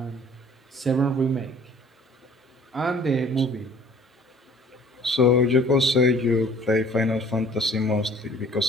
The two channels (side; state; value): both; normal; correlation 0.53